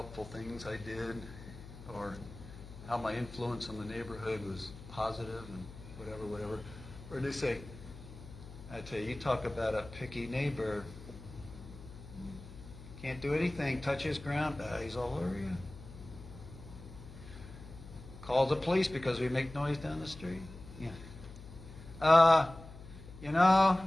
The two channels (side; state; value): left; noise; hum, 15 dB below the sound